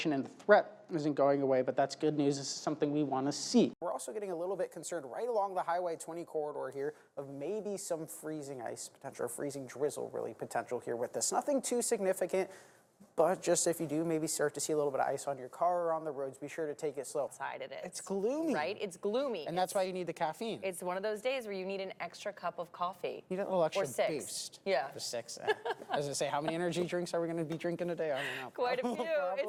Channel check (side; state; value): both; identical; correlation 1.00